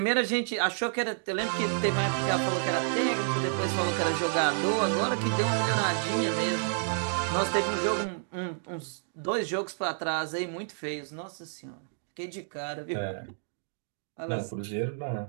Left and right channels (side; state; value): left; silent; digital silence